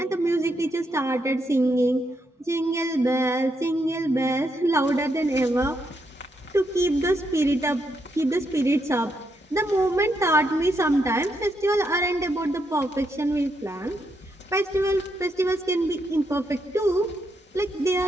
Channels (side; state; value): both; normal; correlation 0.79